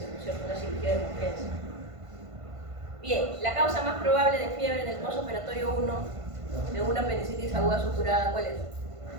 ¿no es cierto? Una cirugía de emergencia. Bien, la causa más probable de fiebre en el postoperatorio 1 de una apendicitis aguda suturada, ¿cuál es?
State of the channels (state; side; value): late; left; 1.5 ms